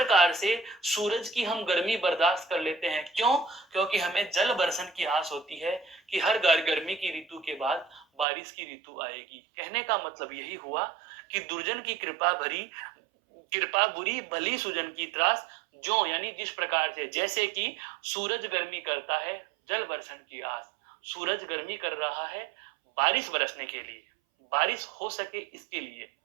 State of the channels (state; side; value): drops out; left; at 8.2 s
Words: से सूरज की हम गर्मी बर्दाश्त कर लेते हैं, क्यों? क्योंकि हमें जल बरसन की आस होती है कि हर गर्मी की ऋतु के बाद बारिश की ऋतु आएगी। कहने का मतलब यही हुआ कि दुर्जन की कृपा भरी, कृपा बुरी, भली सुजन की त्रास, जो यानी जिस प्रकार से, जैसे कि सूरज गर्मी करता है, जल बरसन की आस, सूरज गर्मी कर रहा है बारिश बरसने के लिए, बारिश हो सके इसके लिए।